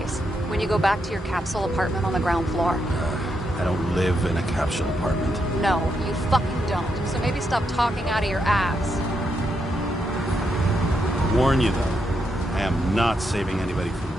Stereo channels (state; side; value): normal; both; correlation 0.81